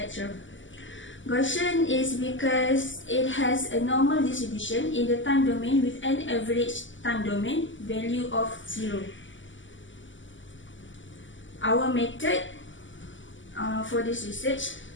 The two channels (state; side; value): late; right; 0.55 ms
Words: Gaussian is because it has a normal distribution in the time domain with an average time domain value of 0. Our method for this research,